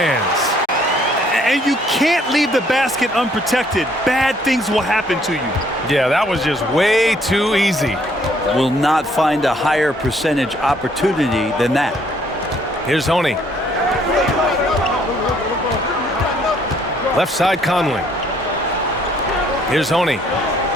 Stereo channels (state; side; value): normal; both; correlation 0.65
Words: And you can't leave the basket unprotected. Bad things will happen to you. Yeah, that was just way too easy. Will not find a higher percentage opportunity than that. Here's Honey. Left side Conley. Here's Honey.